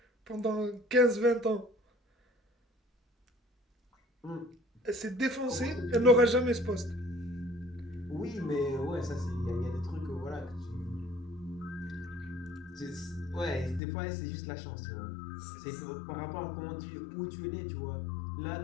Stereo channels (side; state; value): right; drops out; at 13.8 s